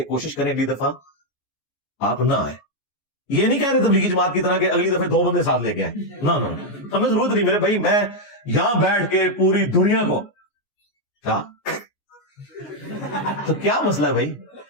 کوشش کریں اگلی دفعہ آپ نہ آئیں. یہ نہیں کہہ رہے تبلیغی جماعت کی طرح کہ اگلی دفعہ 2 بندے ساتھ لے کے آئیں, نہ ہمیں ضرورت نہیں میرے بھائی. میں یہاں بیٹھ کے پوری دنیا کو کیا تو کیا مسئلہ ہے بھائی,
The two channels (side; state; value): right; late; 14 ms